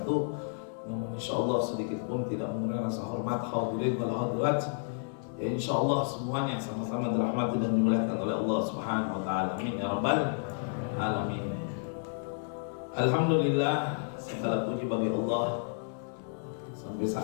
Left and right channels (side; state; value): right; silent; digital silence